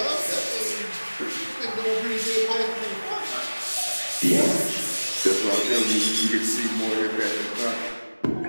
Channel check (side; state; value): both; inverted; correlation -1.00